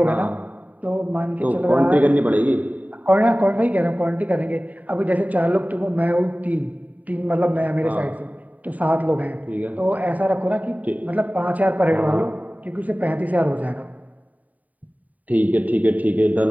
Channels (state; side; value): late; left; 0.073 ms